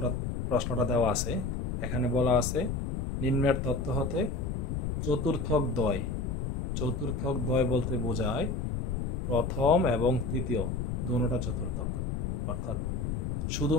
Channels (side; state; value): left; noise; rumble, 1 dB below the sound